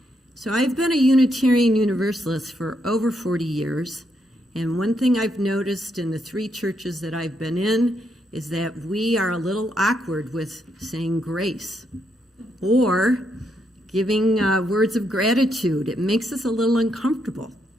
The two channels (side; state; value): both; normal; correlation 0.78